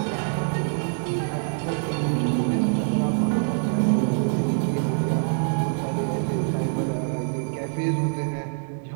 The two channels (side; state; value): left; silent; digital silence